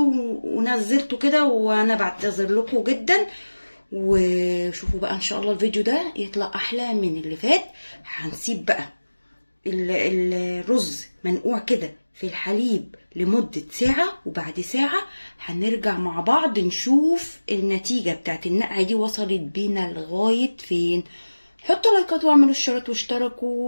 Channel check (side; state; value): both; inverted; correlation -1.00